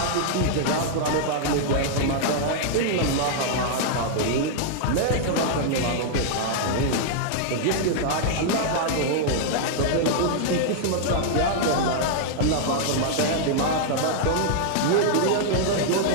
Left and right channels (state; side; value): different; both; correlation -0.01